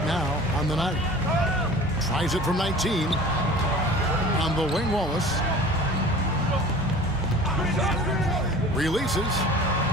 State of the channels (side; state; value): both; normal; correlation 0.42